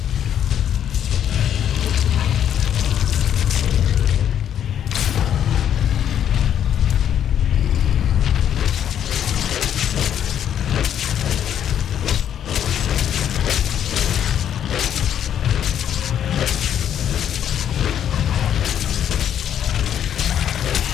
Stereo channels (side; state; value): right; quieter; 9.7 dB